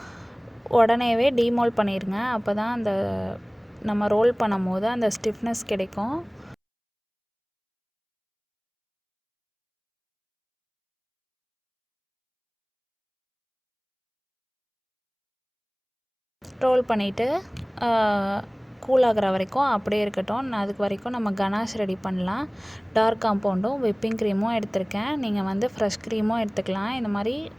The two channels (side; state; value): both; identical; correlation 1.00